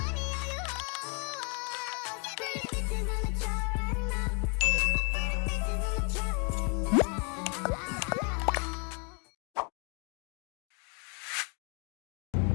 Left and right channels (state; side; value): quieter; right; 36.1 dB